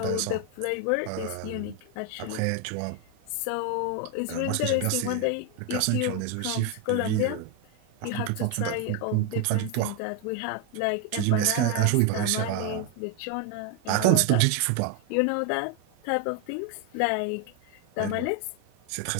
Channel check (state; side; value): different; both; correlation 0.01